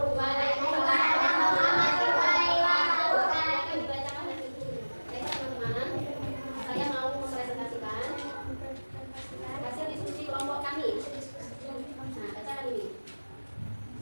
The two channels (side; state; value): both; inverted; correlation -1.00